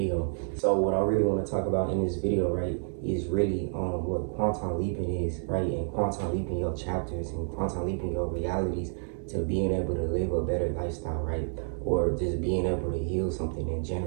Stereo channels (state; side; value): silent; left; 58 dB below the other